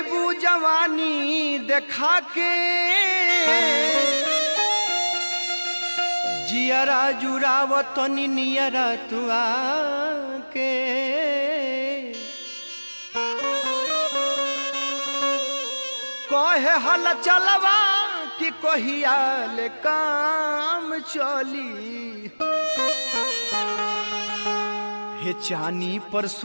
जवानी देखा के जियरा जुरावतनी नियरा तू आके कहे हल चलवा कि कहिया ले काम चली हे चानी पर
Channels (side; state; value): both; inverted; correlation -1.00